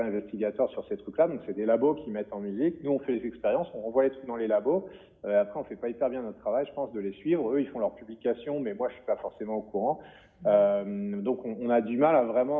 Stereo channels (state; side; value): identical; both; correlation 1.00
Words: investigateur sur ces trucs-là. Donc c'est des labos qui mettent en musique. Nous, on fait les expériences, on renvoie les trucs dans les labos. Après, on fait pas hyper bien notre travail, je pense, de les suivre. Eux, ils font leurs publications, mais moi, je suis pas forcément au courant. Donc on a du mal à